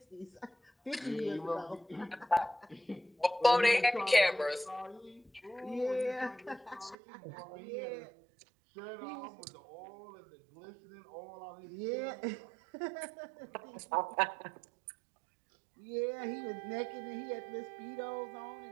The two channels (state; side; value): drops out; left; at 7.0 s